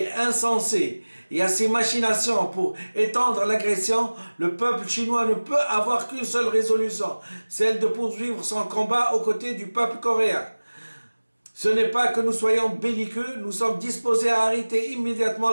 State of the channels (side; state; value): both; inverted; correlation -1.00